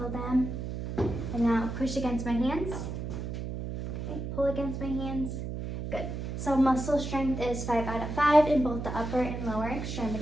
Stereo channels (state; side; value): noise; right; hum, 5 dB below the sound